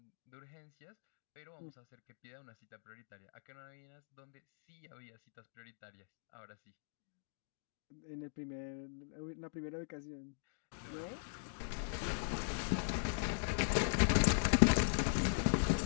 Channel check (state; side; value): silent; right; digital silence